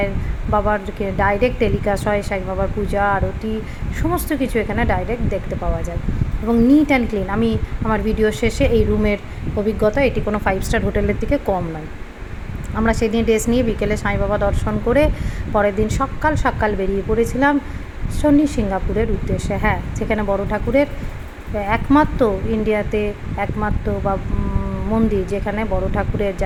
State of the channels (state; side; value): identical; both; correlation 1.00